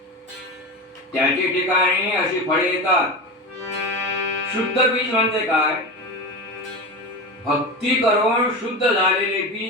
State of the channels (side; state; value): both; normal; correlation 0.24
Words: त्याचे ठिकाणी अशी फळे येतात. शुद्ध बीज म्हणजे काय? भक्ती करून शुद्ध झालेले